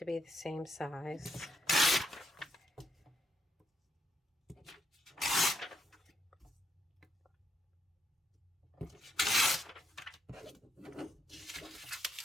be the same size.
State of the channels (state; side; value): normal; both; correlation 0.78